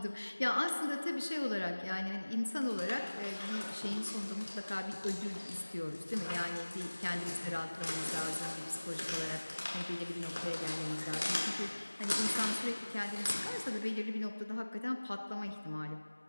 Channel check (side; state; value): both; inverted; correlation -1.00